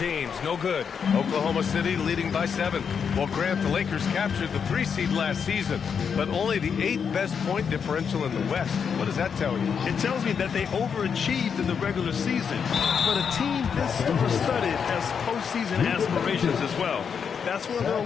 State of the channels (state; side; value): quieter; right; 6.8 dB